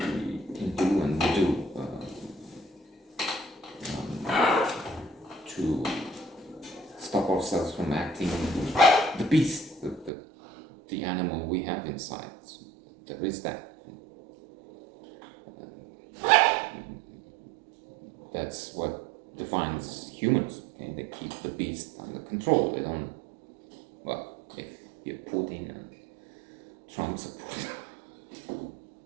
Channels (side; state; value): left; drops out; at 10.1 s